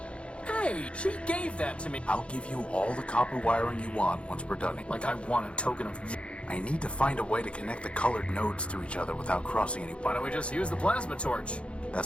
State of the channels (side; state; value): right; late; 0.059 ms